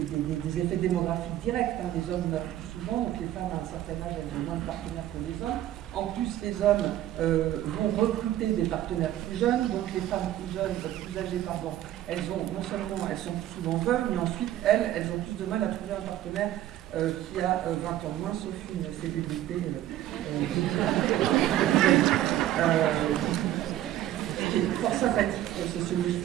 effets démographiques directs. Les hommes meurent plus souvent, donc les femmes à un certain âge, elles ont moins de partenaires que les hommes. En plus, les hommes vont recruter des partenaires plus jeunes, donc les femmes plus jeunes, plus âgées, elles ont, non seulement elles sont plus souvent veuves, mais ensuite elles ont plus de mal à trouver un partenaire qui a 20 ans moins, sauf une célébrité.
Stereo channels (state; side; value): quieter; left; 13.0 dB